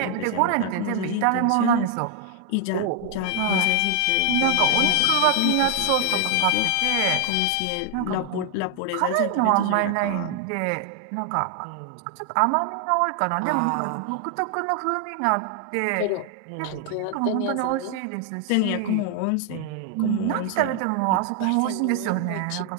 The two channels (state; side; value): different; both; correlation 0.00